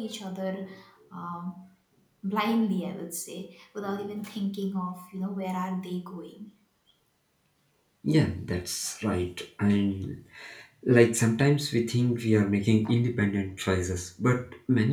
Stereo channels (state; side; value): identical; both; correlation 1.00